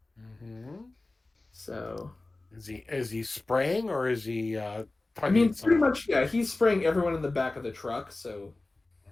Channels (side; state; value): right; quieter; 3.0 dB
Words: Mm-hmm. So is he spraying or is he? I mean, pretty much, yeah. He's spraying everyone in the back of the truck. So